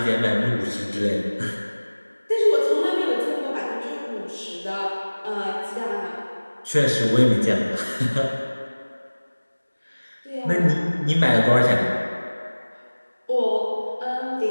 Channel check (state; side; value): inverted; both; correlation -1.00